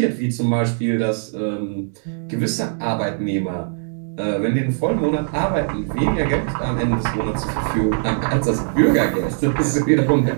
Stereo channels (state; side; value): silent; left; 64 dB below the other